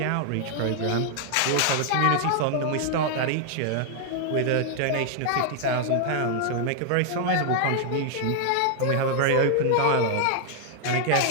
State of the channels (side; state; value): both; different; correlation 0.00